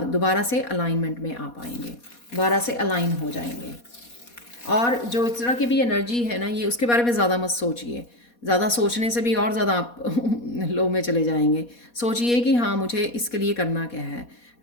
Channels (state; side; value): late; right; 4.2 ms